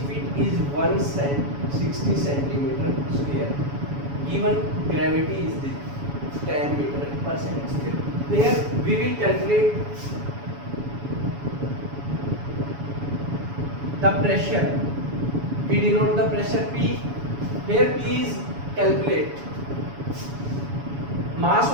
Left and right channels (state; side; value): late; left; 7.1 ms